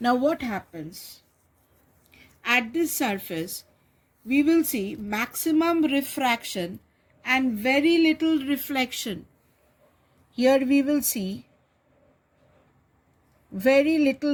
Now, what happens? At this surface, we will see maximum refraction and very little reflection. Here we will see very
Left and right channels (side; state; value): both; identical; correlation 1.00